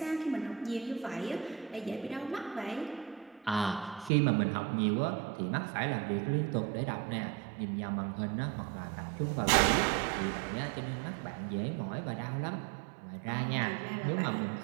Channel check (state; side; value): drops out; left; at 4.1 s